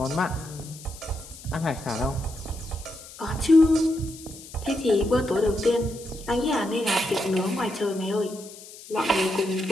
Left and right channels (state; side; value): noise; left; hiss, 17 dB below the sound